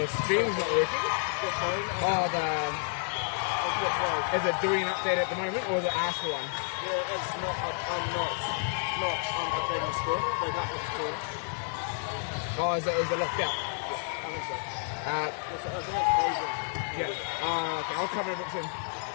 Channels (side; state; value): right; silent; 58 dB below the other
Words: Your stream's not working? The phone. Oh, is it doing an update at the moment, or is it asked for one? Yeah, it's not. I'm not updating the score. They got the score. Oh, is it locked out? I think so. Uh, I think it's frozen. yeah. Okay, I'll cover it soon.